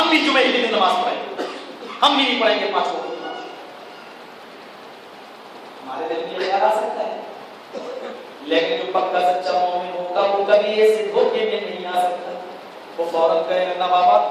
بھی جمعے کے دن نماز پڑھیں گے، ہم بھی نہیں پڑھیں گے 5 وقت کی نماز۔ ہمارے دل میں یہ خیال آ سکتا ہے، لیکن جو پکا سچا مومن ہوگا وہ کبھی ایسے دھوکے میں نہیں آ سکتا، وہ فوراً کہے گا نہ بابا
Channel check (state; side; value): identical; both; correlation 1.00